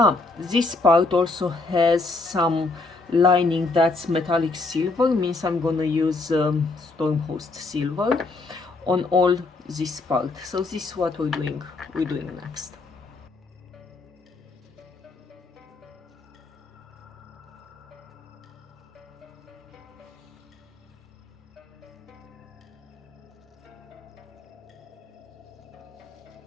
this part also has some lining that's metallic silver, means I'm gonna use Stormhost silver on all this part. So this is what we're doing next.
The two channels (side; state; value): right; quieter; 3.5 dB